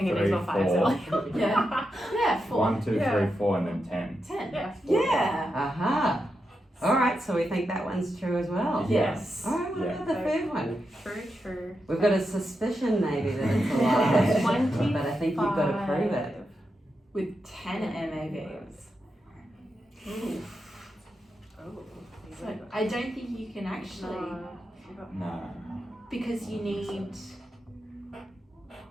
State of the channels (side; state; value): both; normal; correlation 0.87